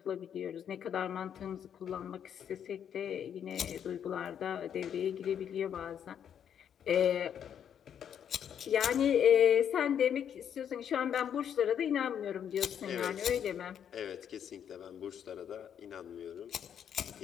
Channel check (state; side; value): quieter; right; 8.8 dB